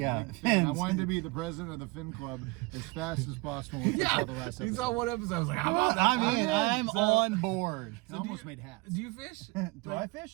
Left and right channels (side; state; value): left; quieter; 24.6 dB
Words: Like fin. I fins. wanted to be the president of the Fin Club as fast as possible. Once I saw the last You episode. saw one episode. I was like, how about that? I mean, did, I'm so- on board. I almost made hats. Do you fish? Do I